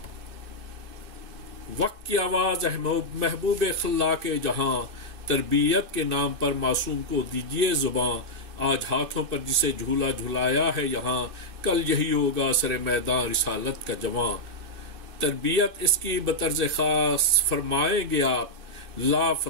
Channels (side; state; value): left; late; 2.6 ms